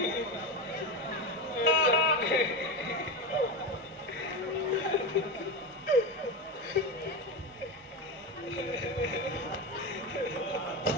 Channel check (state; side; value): normal; both; correlation 0.18